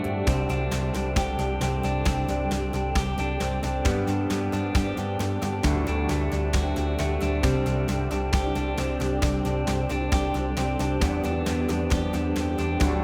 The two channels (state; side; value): identical; both; correlation 1.00